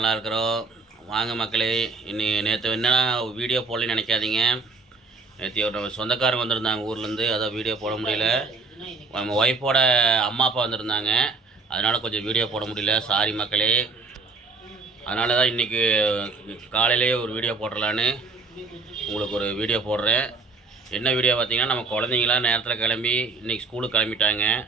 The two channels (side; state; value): left; quieter; 3.9 dB